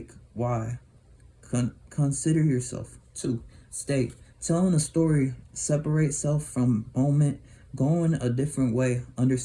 Why? Consider yourself. 2. State. Telling a story, separate self from moment, going a different way,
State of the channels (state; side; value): identical; both; correlation 1.00